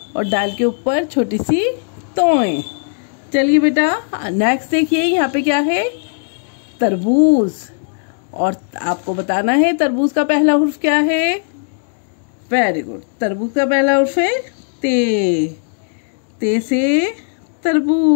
और डाल के ऊपर छोटी सी तोय। चलिए बेटा नेक्स्ट देखिए, यहाँ पे क्या है। तरबूज और आपको बताना है तरबूज का पहला हुर्फ क्या है। वेरी गुड, तरबूज का पहला हुर्फ है ते, ते से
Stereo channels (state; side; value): silent; right; digital silence